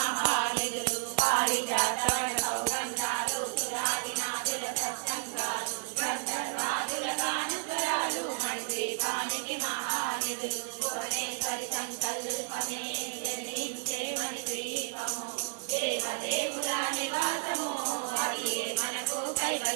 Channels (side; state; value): left; silent; digital silence